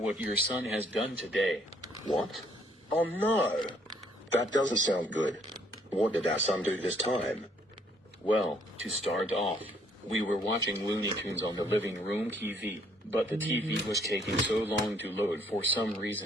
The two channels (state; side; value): normal; both; correlation 0.65